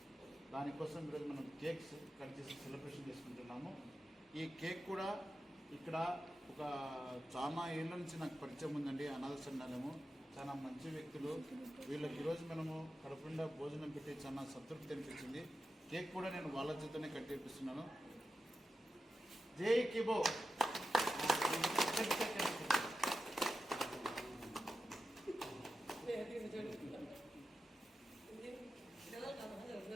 దానికోసం ఈరోజు మనం కేక్స్ కట్ చేసి సెలబ్రేషన్ చేసుకుంటున్నాము. ఈ కేక్ కూడా ఇక్కడ ఒక చాలా ఏళ్ళ నుంచి నాకు పరిచయం ఉందండి. అనాథ సంఘాలము చాలా మంచి వ్యక్తులు. వీళ్ళకి ఈరోజు మనము కడుపుండా భోజనం పెట్టి చాలా సంతృప్తి అనిపించింది. కేక్ కూడా నేను వాళ్ళ చేతనే కట్ చేపిస్తున్నాను. జై కీబో.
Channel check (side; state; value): both; normal; correlation 0.91